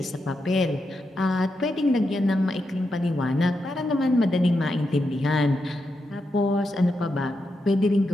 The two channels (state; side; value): normal; both; correlation 0.85